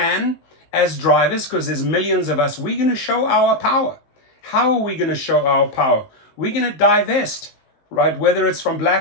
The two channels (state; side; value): late; right; 20 ms